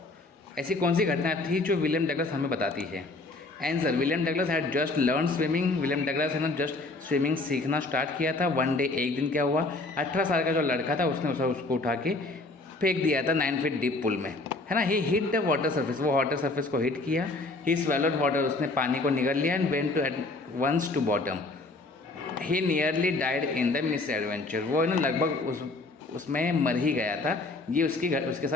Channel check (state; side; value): quieter; right; 3.2 dB